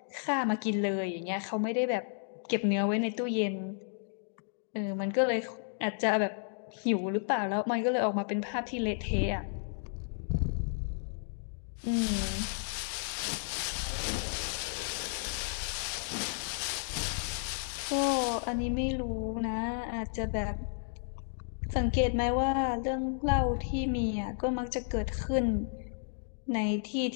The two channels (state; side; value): silent; right; digital silence